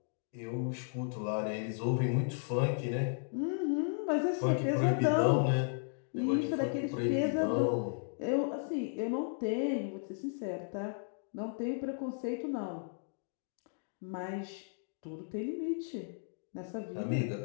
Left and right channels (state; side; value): silent; right; digital silence